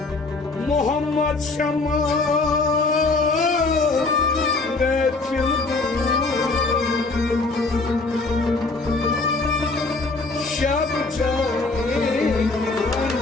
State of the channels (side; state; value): right; quieter; 3.6 dB